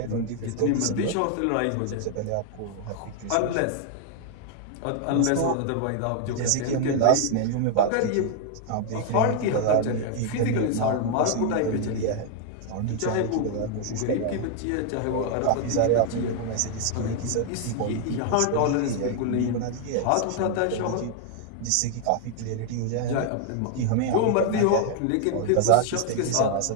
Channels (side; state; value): both; different; correlation 0.00